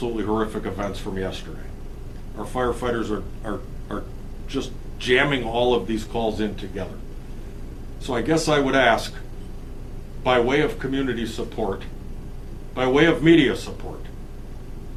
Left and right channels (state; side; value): identical; both; correlation 1.00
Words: horrific events from yesterday. Our firefighters are just jamming all of these calls in together. So I guess I would ask, by way of community support, by way of media support,